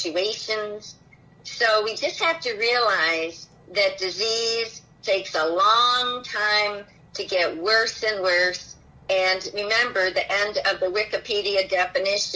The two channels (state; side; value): identical; both; correlation 1.00